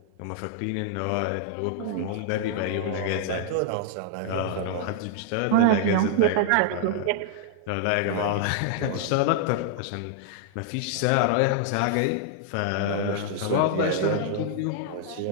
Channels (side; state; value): both; different; correlation -0.01